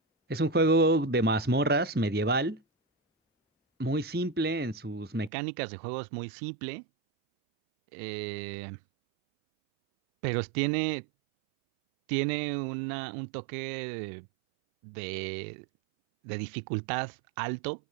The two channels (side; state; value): left; drops out; at 5.3 s